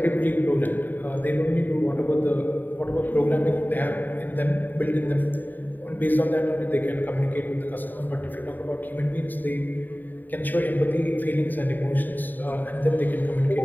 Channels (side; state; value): right; late; 0.089 ms